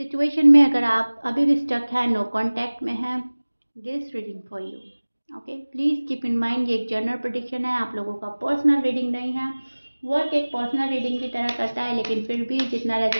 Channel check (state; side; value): inverted; both; correlation -1.00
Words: में अगर आप अभी भी स्टक है, नो कांटेक्ट में है, this reading for you. Okay, please keep in mind ये एक जनरल प्रेडिक्शन है, आप लोगों का पर्सनल रीडिंग नहीं है। वर्क एक पर्सनल रीडिंग की तरह करता है, लेकिन फिर भी जितना